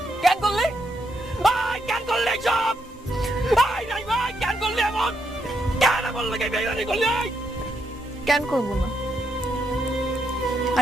কেন করলি? কেন করলি এইসব? নাই ভাই, কেন করলি এমন? কেন এমন লাগে বেইমানি করলি? কেন করবো না?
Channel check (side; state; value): both; normal; correlation 0.78